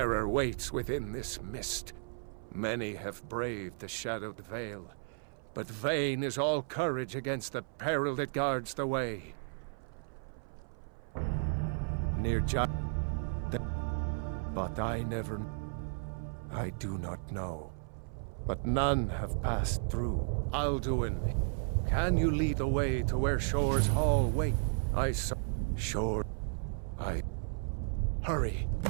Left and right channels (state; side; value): silent; left; 55 dB below the other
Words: waits within this mist. Many have braved the shadowed veil, but vain is all courage against the peril that guards the way. Near but I do not know. But none have passed through. Alduin, can you lead the way to where Shore's Hall wait? I saw Shore. Hurry,